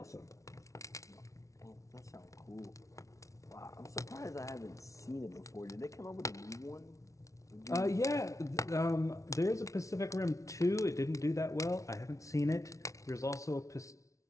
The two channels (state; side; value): late; right; 0.15 ms